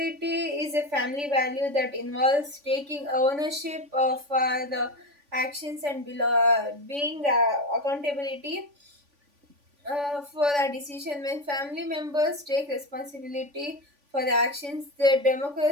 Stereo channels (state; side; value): late; left; 3.5 ms